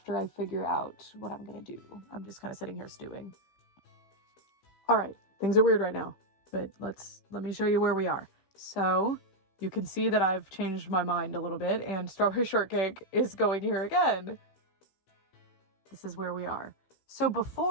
I figure out what I'm gonna do. I'm just kind of sitting here stewing. All right, things are weird right now, but let me show you where we are. So you can see that I've changed my mind a little bit, and Strawberry Shortcake is going here again. This is where we are. So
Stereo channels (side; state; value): right; late; 16 ms